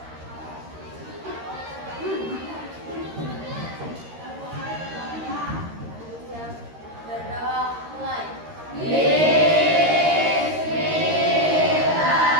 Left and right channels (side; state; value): left; late; 13 ms